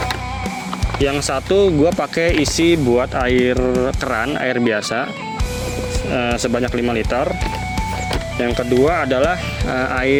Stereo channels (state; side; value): identical; both; correlation 1.00